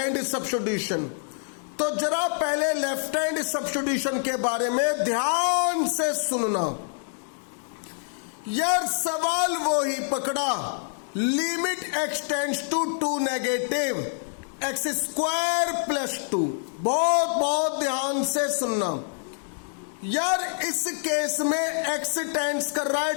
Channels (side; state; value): right; silent; 57 dB below the other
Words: सब्स्टिट्यूशन। तो जरा पहले लेफ्ट हैंड सब्स्टिट्यूशन के बारे में ध्यान से सुनना यार। सवाल वो ही पकड़ा, limit extends to 2 negative x square plus 2। बहुत ध्यान से सुनना यार, इस केस में x टेंड्स कर रहा है